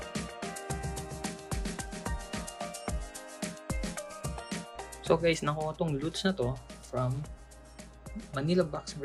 So guys, nakuha tong loots na to from MANILA Box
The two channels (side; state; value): both; identical; correlation 1.00